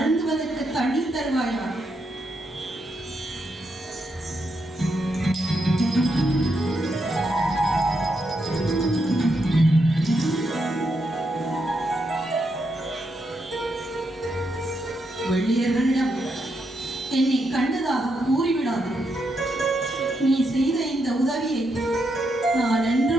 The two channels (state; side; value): normal; both; correlation 0.81